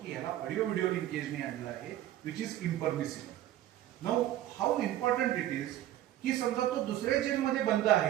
की ह्याला ऑडिओ व्हिडिओ लिंकेजने आणलं आहे, which is impermissible. Now how important it is की समजा तो दुसऱ्या जेलमध्ये बंद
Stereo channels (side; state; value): left; quieter; 13.2 dB